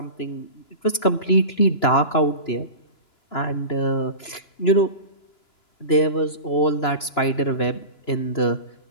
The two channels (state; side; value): late; right; 2.9 ms